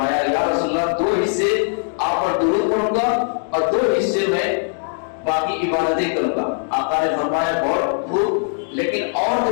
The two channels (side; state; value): right; silent; 66 dB below the other